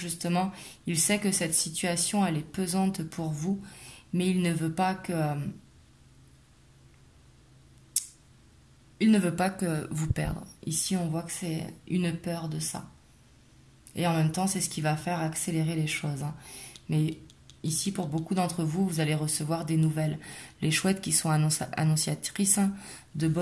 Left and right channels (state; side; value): identical; both; correlation 1.00